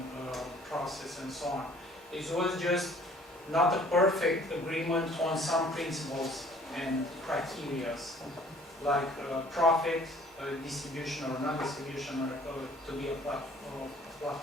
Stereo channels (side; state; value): both; normal; correlation 0.55